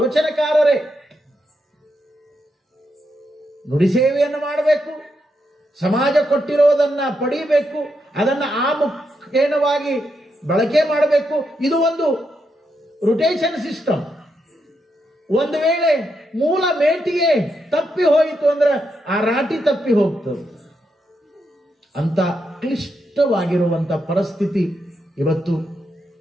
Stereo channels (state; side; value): normal; both; correlation 0.82